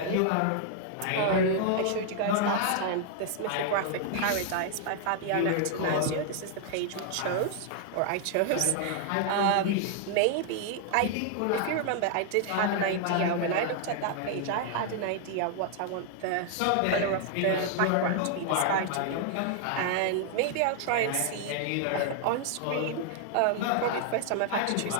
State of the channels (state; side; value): different; both; correlation 0.00